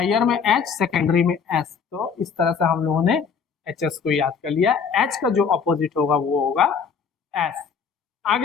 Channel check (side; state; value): right; quieter; 6.3 dB